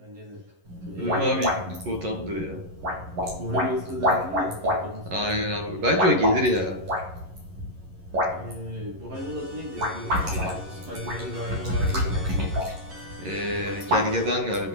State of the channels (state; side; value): late; left; 11 ms